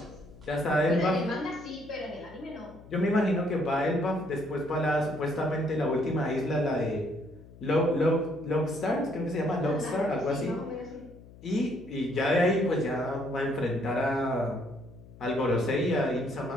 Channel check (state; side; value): noise; left; hum, 20 dB below the sound